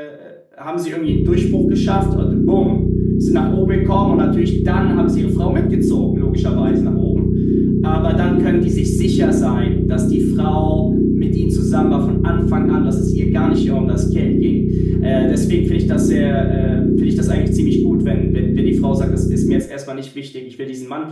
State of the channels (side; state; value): both; identical; correlation 1.00